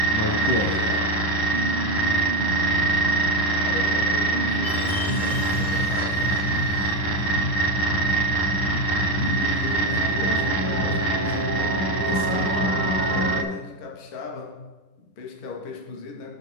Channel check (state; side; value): late; right; 10 ms